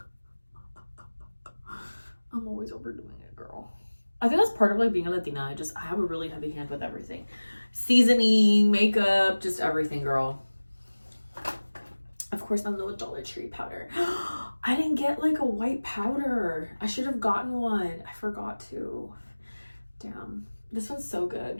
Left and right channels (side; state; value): both; inverted; correlation -1.00